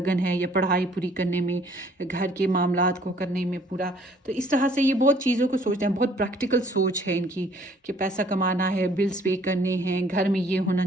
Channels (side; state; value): both; normal; correlation 0.59